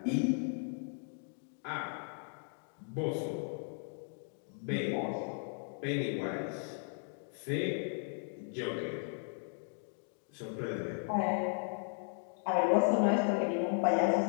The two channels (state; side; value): silent; right; 54 dB below the other